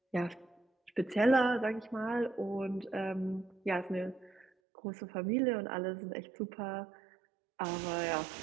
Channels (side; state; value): left; drops out; at 4.5 s